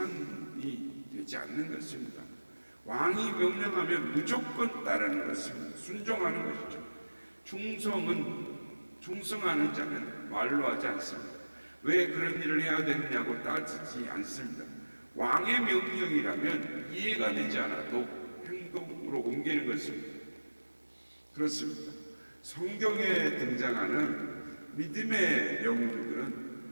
되지 않는 것입니다. 왕이 명령하면 무조건 따르는 것입니다. 순종하는 것이죠. 충성하는 자는 말로 하지 않습니다. 왜 그런 일을 해야 되느냐고 따지지 않습니다. 왕의 명령이라면 이해가 되지 않아도 행동으로 옮기는 것입니다. 그렇습니다. 성경에 등장하는 믿음의 영웅들은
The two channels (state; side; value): inverted; both; correlation -1.00